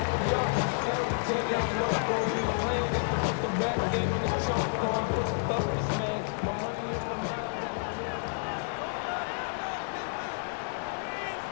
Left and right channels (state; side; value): silent; right; digital silence